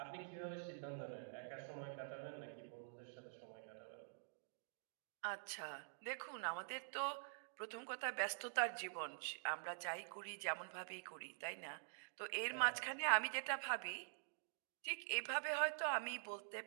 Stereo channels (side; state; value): left; silent; digital silence